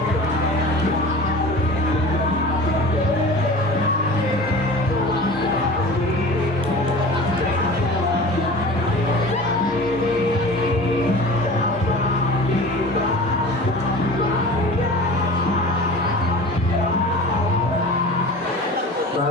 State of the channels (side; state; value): both; normal; correlation 0.38